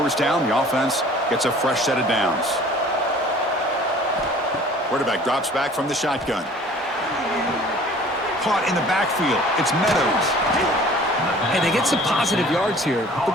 down. The offense gets a fresh set of downs. Quarterback drops back from the shotgun. Caught in the backfield. It's Meadows. And they get some positive yards here,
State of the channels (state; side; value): normal; both; correlation 0.49